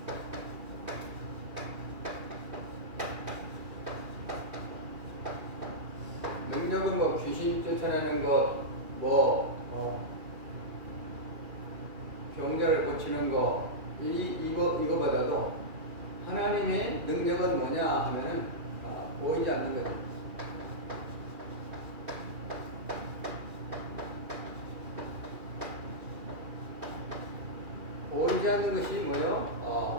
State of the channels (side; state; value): left; late; 2.4 ms